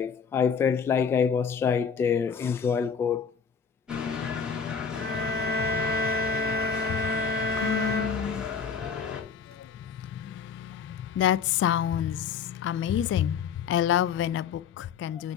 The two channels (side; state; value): right; quieter; 6.4 dB